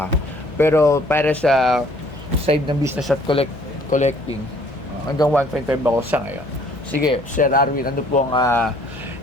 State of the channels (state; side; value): noise; left; hum, 18 dB below the sound